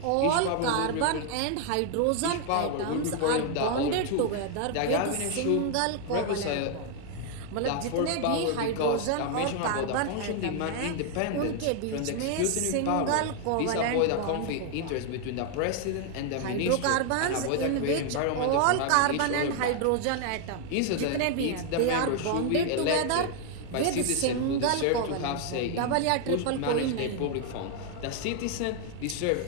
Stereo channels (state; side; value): different; both; correlation 0.00